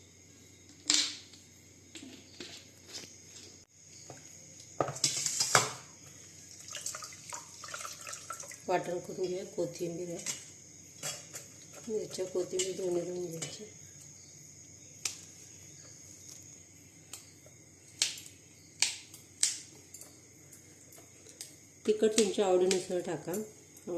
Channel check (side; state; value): both; identical; correlation 1.00